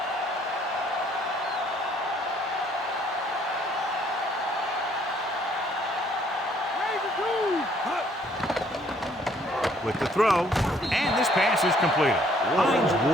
With the throw, and this pass is completed. Hines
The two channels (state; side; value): normal; both; correlation 0.64